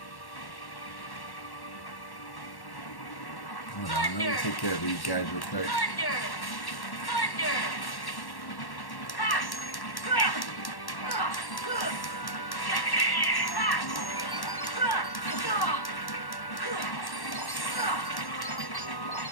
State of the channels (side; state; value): right; late; 1.1 ms